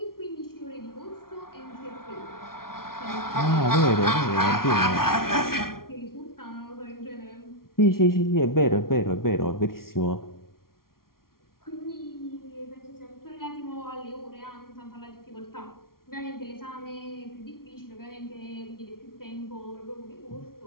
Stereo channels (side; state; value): right; late; 0.93 ms